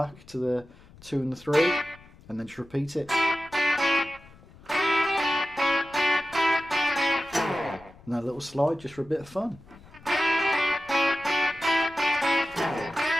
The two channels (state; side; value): noise; left; rumble, 23 dB below the sound